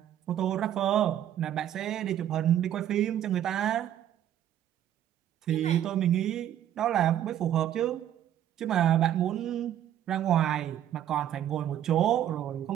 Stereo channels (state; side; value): quieter; left; 11.1 dB